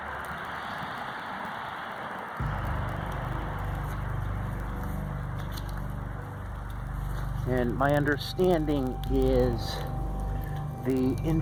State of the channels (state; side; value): identical; both; correlation 1.00